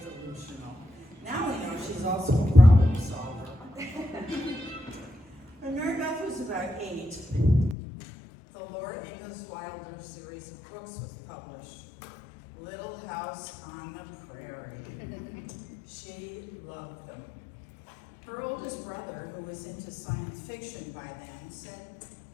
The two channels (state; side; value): drops out; right; at 7.8 s